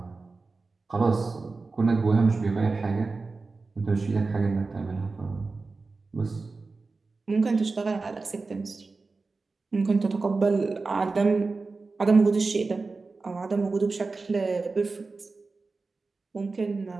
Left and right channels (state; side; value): quieter; left; 3.9 dB